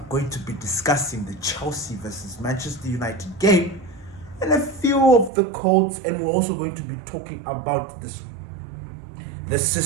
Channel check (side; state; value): left; drops out; at 5.3 s